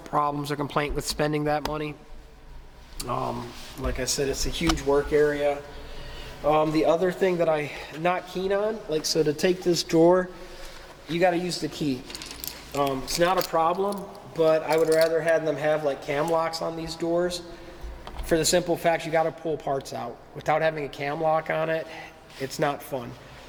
or complaint with spending that money. Like I said, it's a huge work area. The other thing that I'm not keen on, like, so to take this drawer, you got to use the key. It's not a problem, but I would rather have them have like cam locks on these doors, for the simple fact you got to pull parts out. Without having a cam lock on it, it's not fun.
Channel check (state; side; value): identical; both; correlation 1.00